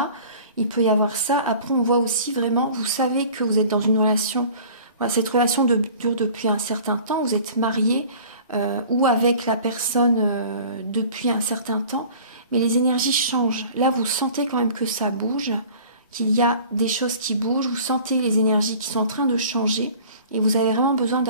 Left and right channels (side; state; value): both; inverted; correlation -0.45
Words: Il peut y avoir ça. Après, on voit aussi vraiment, vous savez que vous êtes dans une relation, voilà, cette relation dure depuis un certain temps, vous êtes marié ou avec la personne depuis un certain temps, mais les énergies changent. Là, vous sentez quand même que ça bouge, qu'il y a des choses qui bougent, vous sentez les énergies qui sont en train de changer et vous avez vraiment besoin